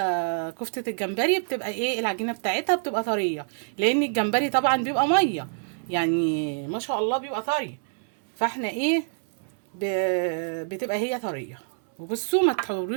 كفتة الجمبري بتبقى ايه، العجينة بتاعتها بتبقى طرية، لان الجمبري طبعا بيبقى مية يعني ما شاء الله بيبقى طري. فاحنا ايه بتبقى هي طرية. وبصوا ما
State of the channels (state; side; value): silent; left; 61 dB below the other